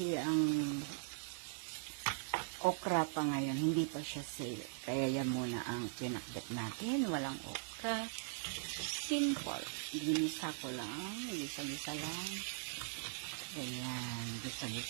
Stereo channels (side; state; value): left; silent; digital silence